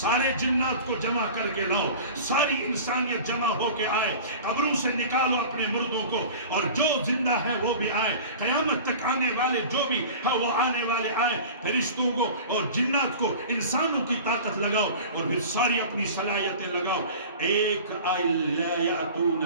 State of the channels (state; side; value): inverted; both; correlation -0.38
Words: سارے جنات کو جمع کر کے لاؤ, ساری انسانیت جمع ہو کے آئے, قبروں سے نکالو اپنے مردوں کو, اور جو زندہ ہے وہ بھی آئے, قیامت تک آنے والے جو بھی ہے وہ آنے والے آئے. فرشتوں کو اور جنات کو, انسانوں کی طاقت لگاؤ, اور پھر ساری اپنی صلاحیتیں لگاؤ. ایک لا